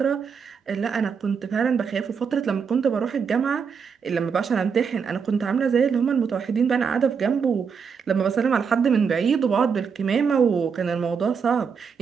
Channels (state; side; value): quieter; left; 6.2 dB